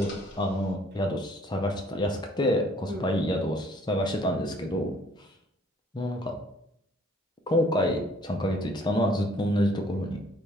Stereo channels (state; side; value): normal; both; correlation 0.59